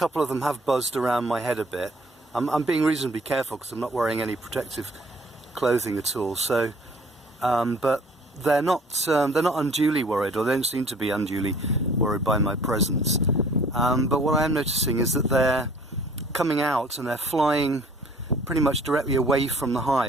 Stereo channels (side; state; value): both; normal; correlation 0.54